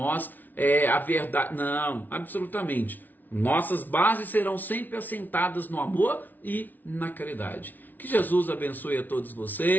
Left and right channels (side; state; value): right; late; 0.083 ms